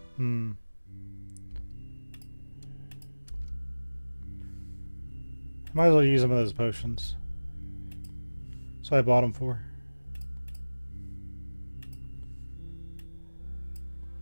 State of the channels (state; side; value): inverted; both; correlation -1.00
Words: Might as well use some of those potions. So I bought them for.